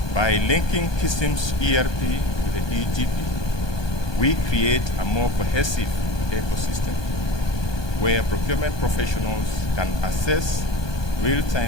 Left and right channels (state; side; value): late; right; 1.2 ms